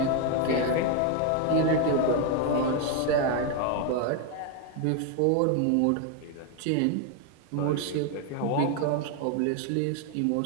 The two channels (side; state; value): both; different; correlation 0.01